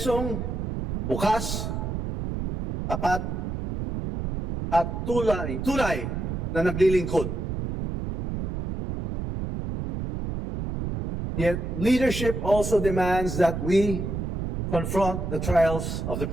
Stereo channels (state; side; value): noise; right; rumble, 4 dB below the sound